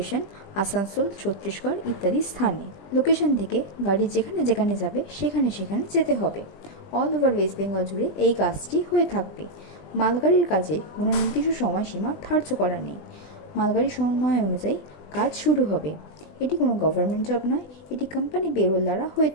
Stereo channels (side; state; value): right; late; 20 ms